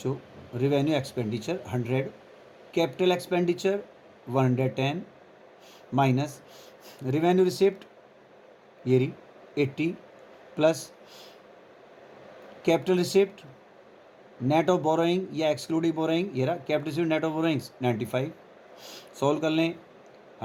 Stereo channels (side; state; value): both; identical; correlation 1.00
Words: revenue expenditure 100, capital expenditure 110 minus revenue receipt ये रही 80 plus capital receipt net of borrowing या एक्सक्लूडिंग बोरोइंग ये रहा capital receipt net of borrowings 95। Solve कर लें,